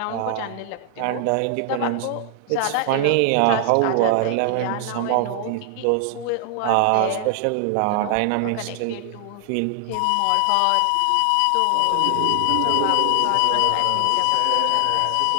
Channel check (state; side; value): different; both; correlation 0.00